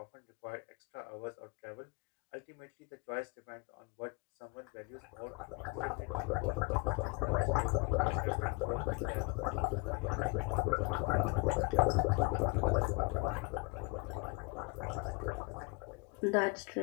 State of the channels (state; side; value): quieter; right; 27.0 dB